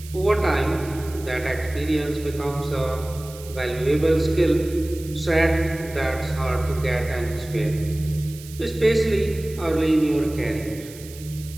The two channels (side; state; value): right; noise; hiss, 18 dB below the sound